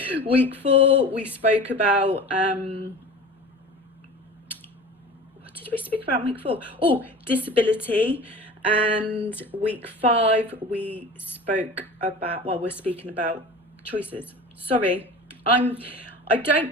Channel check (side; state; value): both; normal; correlation 0.36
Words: Week 4 we spoke about what did we speak about in week 4? Oh, disability. And week 5 we spoke about, well, we're speaking about choices. Sorry, I